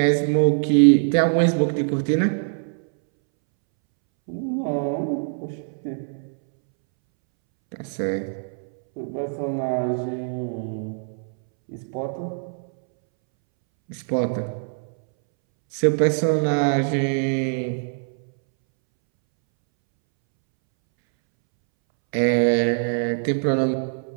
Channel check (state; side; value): silent; left; 63 dB below the other